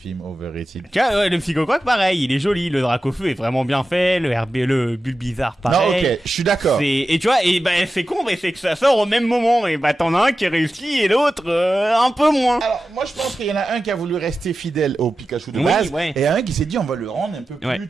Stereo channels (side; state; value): both; normal; correlation 0.93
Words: overrated. Tu vois, ouais, le Psychocroc, pareil, il est joli, le Dracofeu est vraiment bien fait, le Bulbizarre, Non, pareil. ok, je suis d'accord. Et tu vois, et bah c'est con, mais c'est que ça sort au même moment, et bah t'en as un qui réussit et l'autre un peu moins. Alors, moi, je pense qu'il y en a un qui a voulu rester fidèle au Pikachu de Oui, base, ouais. et un qui s'est dit, on va le rendre un peu plus, Ouais.